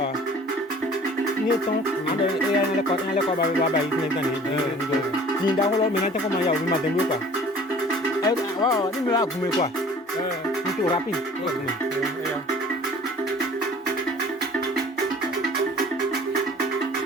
Ni tong, ada yang lekor bay ni kan ni. Ni dah kalau minat kau mayau ni macam tu kan. Wow, ni mula aku mekwa. Itu rapi.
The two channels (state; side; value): normal; both; correlation 0.48